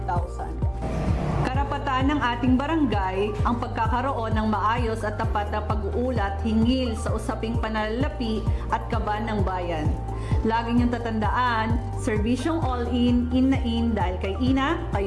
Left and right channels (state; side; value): identical; both; correlation 1.00